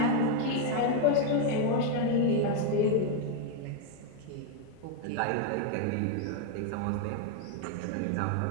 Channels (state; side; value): different; both; correlation 0.01